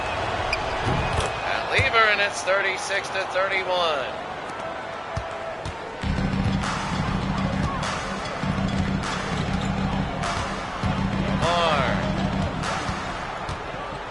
Pat Lever, and it's 36-31.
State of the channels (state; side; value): identical; both; correlation 1.00